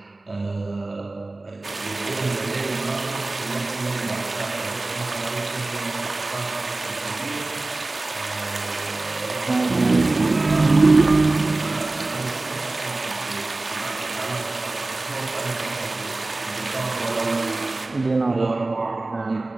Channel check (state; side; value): quieter; left; 3.1 dB